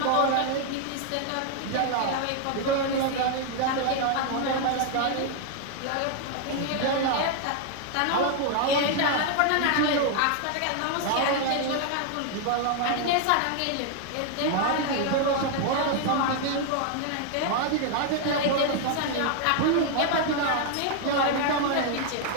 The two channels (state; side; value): different; both; correlation 0.00